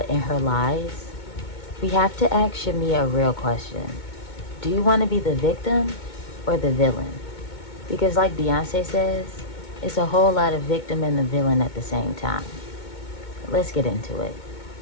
and her lies, we have to ask Shamea a real question. Do you want to be the victim or the villain? Because like Beyonce says, it's a whole lot of victim and the villain at the same time. Let's get into it.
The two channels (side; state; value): right; late; 2.2 ms